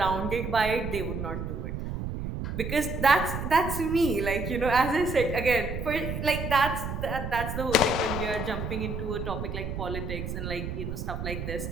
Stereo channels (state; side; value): noise; right; rumble, 5 dB below the sound